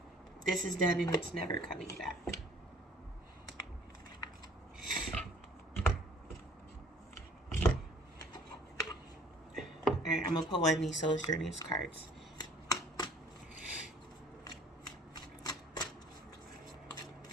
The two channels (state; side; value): normal; both; correlation 0.55